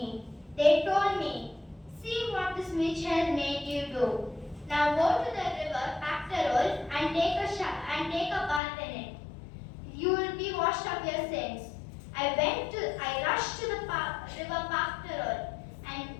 They told me, see what this witch has made you do. Now go to the river Pactarol and take a bath in it. You will be washed of your sins. I rushed to the river Pactarol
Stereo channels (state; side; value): drops out; right; at 8.6 s